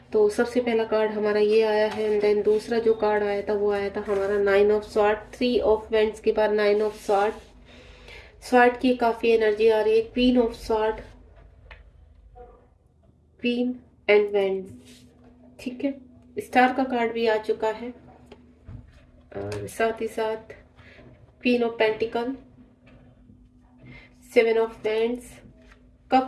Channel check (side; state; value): both; identical; correlation 1.00